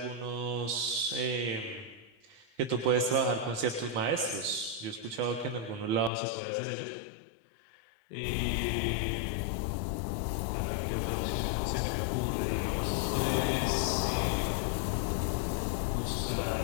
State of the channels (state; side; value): drops out; right; at 6.1 s